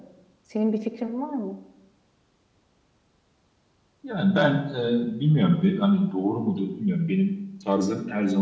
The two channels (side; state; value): both; identical; correlation 1.00